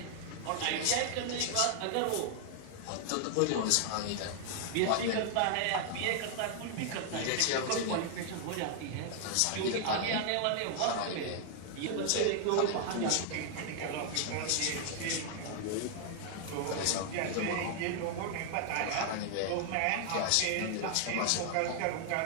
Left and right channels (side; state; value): both; different; correlation 0.00